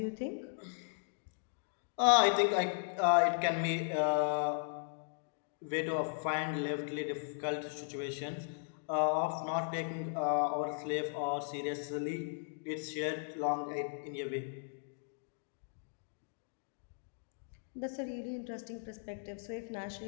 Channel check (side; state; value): right; silent; digital silence